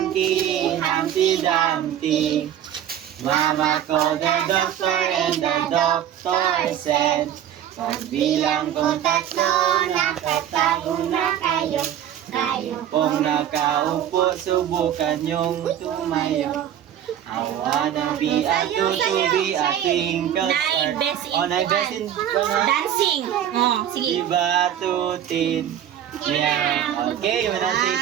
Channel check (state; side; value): quieter; left; 10.5 dB